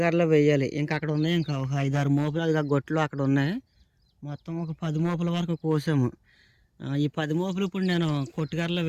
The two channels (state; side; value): identical; both; correlation 1.00